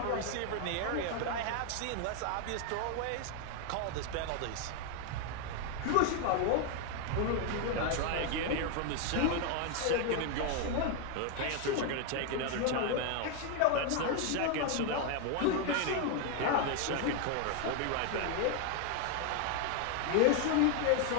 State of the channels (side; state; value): both; different; correlation 0.01